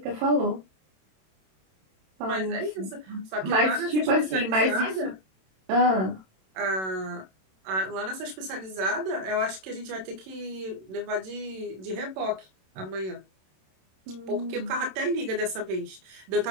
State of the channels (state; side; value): late; left; 27 ms